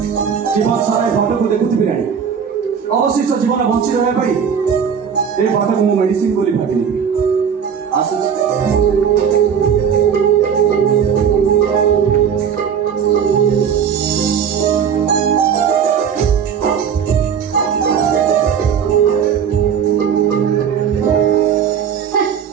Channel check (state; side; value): quieter; left; 7.5 dB